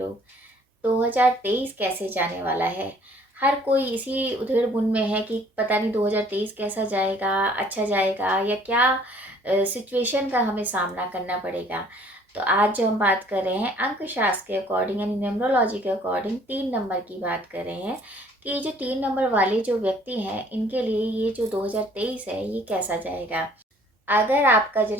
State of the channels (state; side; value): normal; both; correlation 0.57